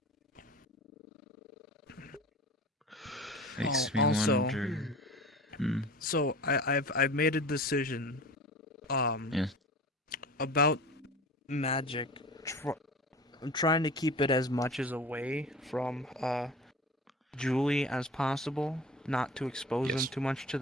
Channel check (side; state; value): both; normal; correlation 0.37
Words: Makes me also, wonder. So I've made a decision. Yeah. About magic. I'm trying to keep it as much as away from Julie as possible, not to expose them too much to